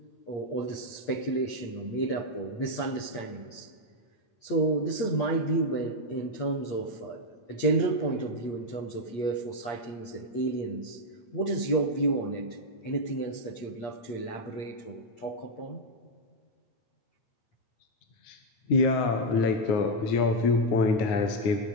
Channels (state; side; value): late; right; 8.6 ms